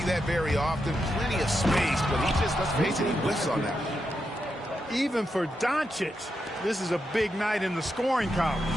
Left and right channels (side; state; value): both; normal; correlation 0.85